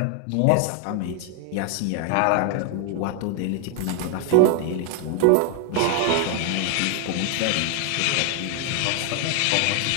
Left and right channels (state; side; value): different; both; correlation 0.00